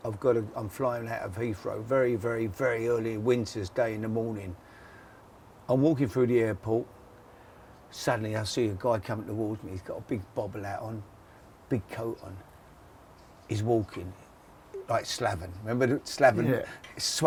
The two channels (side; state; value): both; identical; correlation 1.00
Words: I'm flying out of Heathrow very, very, very early winter's day in the morning. I'm walking through the airport. Suddenly I see a guy coming towards me. He's got a big bobble hat on, big coat on. He's walking like Slaven. Remember Slaven